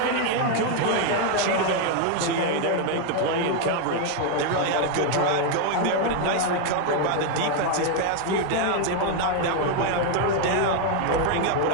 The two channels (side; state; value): both; different; correlation 0.00